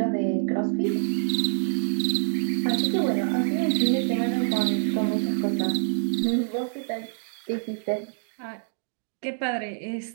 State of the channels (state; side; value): silent; left; digital silence